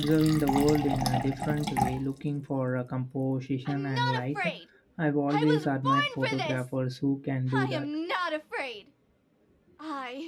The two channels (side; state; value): both; identical; correlation 1.00